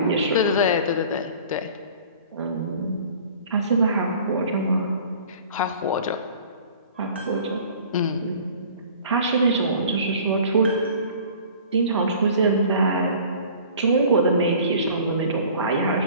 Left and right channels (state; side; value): inverted; both; correlation -0.46